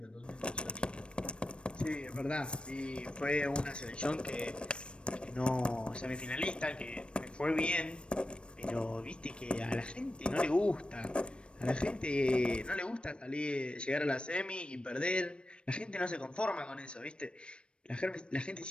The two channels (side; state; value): right; late; 0.057 ms